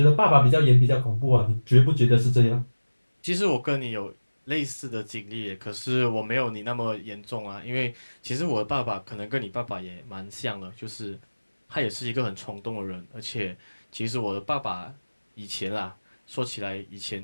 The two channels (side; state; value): both; inverted; correlation -1.00